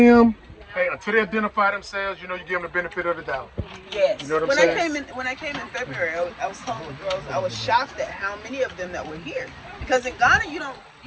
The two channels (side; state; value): both; identical; correlation 1.00